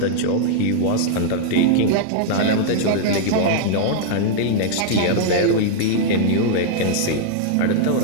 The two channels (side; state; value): both; different; correlation -0.01